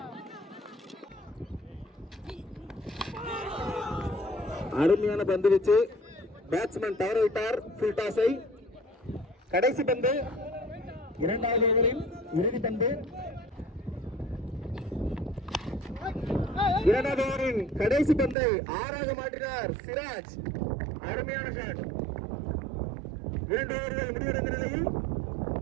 அருமையான பந்து வச்சு பேட்ஸ்மேன் தவற விட்டார் ஃபுல் டாஸை. கடைசி பந்து, இரண்டாவது ஓவரில் இறுதி பந்து. இரண்டாவது ஓவரின் கடைசி பந்தை 6ஆக மாற்றினார் சிராஜ். அருமையான ஷாட். 2 ஓவர்கள் முடிவடைந்த நிலையில்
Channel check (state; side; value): drops out; left; at 18.4 s